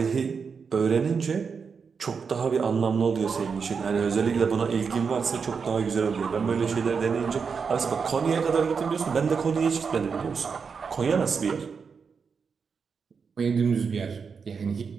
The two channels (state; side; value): quieter; left; 5.7 dB